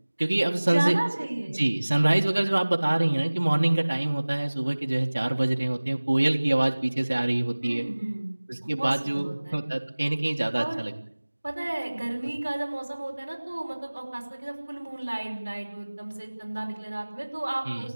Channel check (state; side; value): inverted; both; correlation -1.00